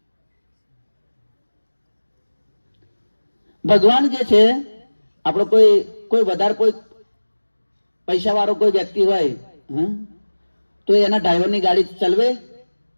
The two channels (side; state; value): both; inverted; correlation -1.00